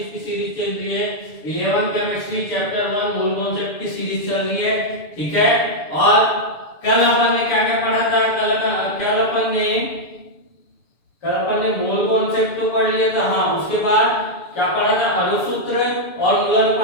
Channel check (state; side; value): late; right; 7.0 ms